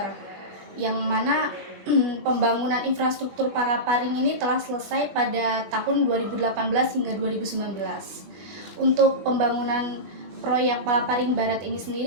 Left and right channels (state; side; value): late; left; 21 ms